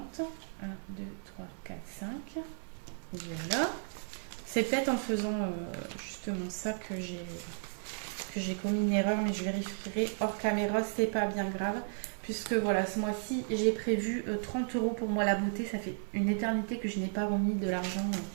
1, 2, 3, 4, 5. Voilà. C'est peut-être en faisant justement ça que j'ai commis une erreur, mais je vérifierai hors caméra, c'est pas bien grave. Puisque voilà, ce mois-ci, j'ai prévu 30 euros pour moi la beauté. Ça fait une éternité que je n'ai pas remis de l'argent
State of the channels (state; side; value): silent; left; 55 dB below the other